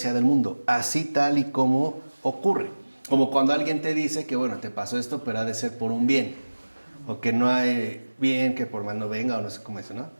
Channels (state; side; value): inverted; both; correlation -1.00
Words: del mundo, así tal y como ocurre. Como cuando alguien te dice que, bueno, te pasó esto, pero ha de ser por un bien, o que no hay bien que por mal no venga, o no sé cómo es, ¿no?